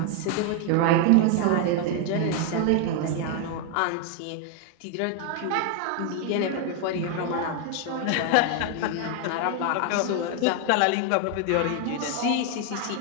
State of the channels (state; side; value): different; both; correlation 0.00